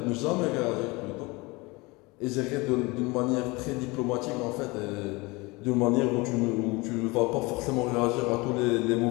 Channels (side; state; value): right; quieter; 24.4 dB